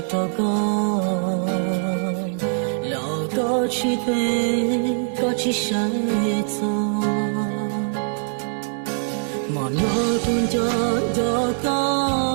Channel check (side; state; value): left; silent; digital silence